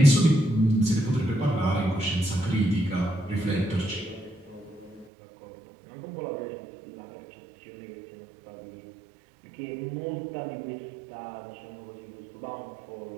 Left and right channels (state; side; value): drops out; left; at 5.1 s